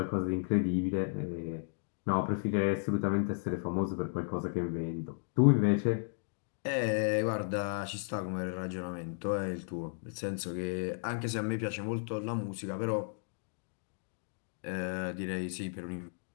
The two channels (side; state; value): right; silent; digital silence